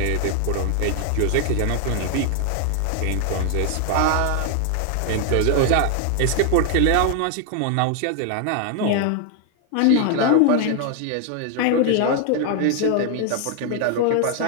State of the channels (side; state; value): both; different; correlation 0.00